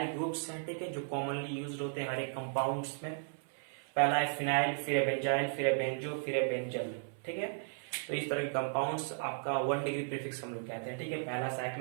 ग्रुप्स हैं, ठीक है, जो कॉमनली यूज होते हैं हर एक कंपाउंड्स में। पहला है फिनाइल, फिर है बेंजाइल, फिर है बेंजो, फिर है बेंजल, ठीक है। तो इस तरह के कंपाउंड्स आपका 1 डिग्री प्रीफिक्स हम लोग कहते हैं, ठीक है। पहला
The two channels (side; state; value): left; silent; 54 dB below the other